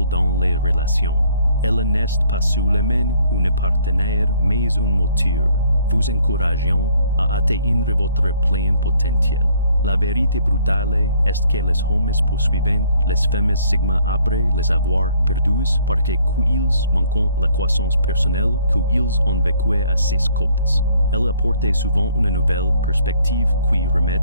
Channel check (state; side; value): inverted; both; correlation -0.62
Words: dans les relations. Elle n'est pas seulement une partenaire, mais un moteur, vous encourageant à atteindre votre plein potentiel. La vérité brutale est que les hommes poursuivent les femmes Sigma après les avoir perdues parce qu'ils manquent la croissance personnelle qu'ils ont vécue à ses côtés. Elle apporte souvent une nouvelle perspective qui remet